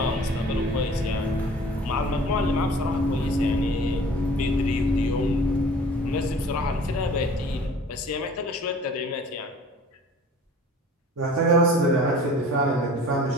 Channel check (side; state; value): both; normal; correlation 0.47